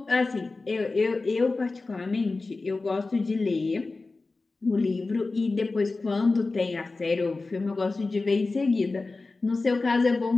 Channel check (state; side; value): quieter; right; 3.6 dB